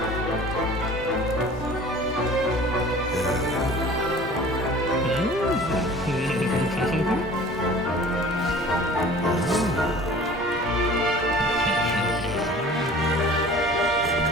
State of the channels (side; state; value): both; normal; correlation 0.45